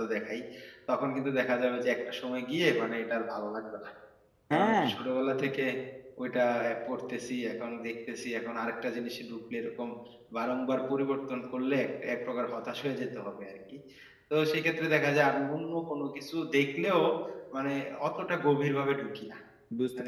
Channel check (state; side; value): identical; both; correlation 1.00